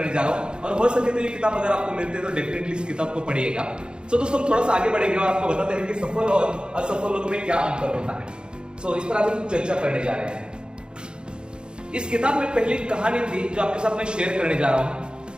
जा रहा हूँ, और हो सके तो ये किताब अगर आपको मिलती है तो डेफिनेटली इस किताब को पढ़िएगा। तो दोस्तों, हम थोड़ा सा आगे बढ़ेंगे और आपको बताते हैं कि सफल और असफल लोगों में क्या अंतर होता है। इस पर आज हम चर्चा करने जा रहे हैं। इस किताब में पहली कहानी थी जो आपके साथ में शेयर करने जा रहा हूं।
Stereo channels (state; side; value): late; left; 0.050 ms